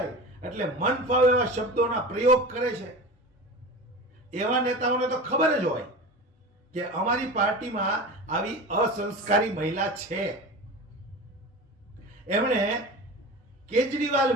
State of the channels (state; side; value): normal; both; correlation 0.31